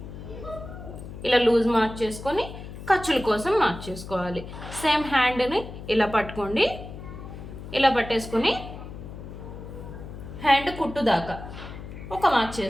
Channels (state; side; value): noise; left; hum, 12 dB below the sound